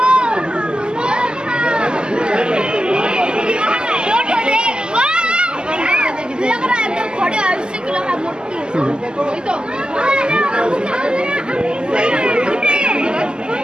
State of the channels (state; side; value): late; left; 0.047 ms